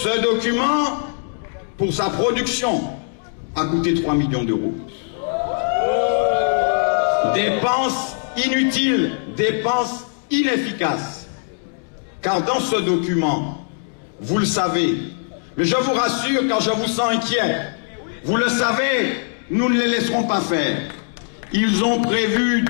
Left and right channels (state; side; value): silent; right; digital silence